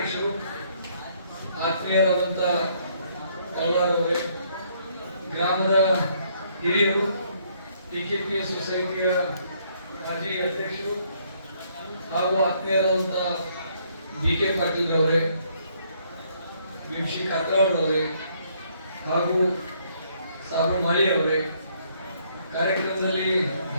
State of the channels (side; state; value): both; inverted; correlation -0.68